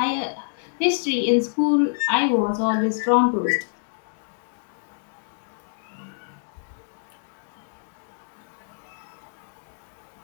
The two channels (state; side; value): silent; right; digital silence